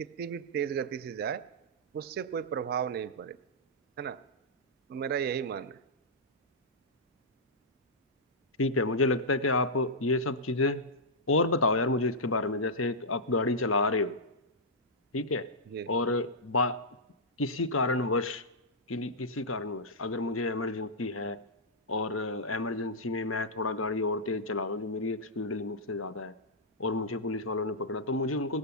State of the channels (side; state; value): both; normal; correlation -0.11